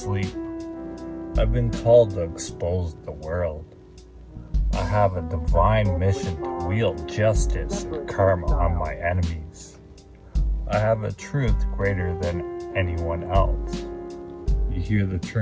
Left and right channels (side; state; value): both; identical; correlation 1.00